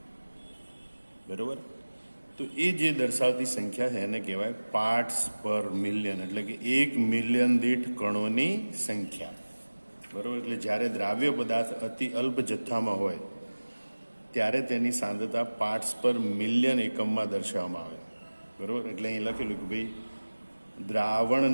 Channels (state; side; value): inverted; both; correlation -1.00